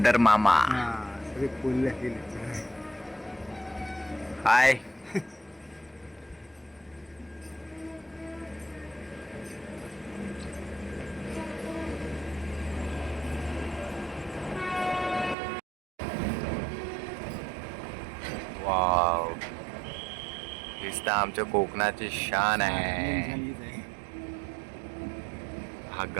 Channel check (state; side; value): drops out; left; at 15.4 s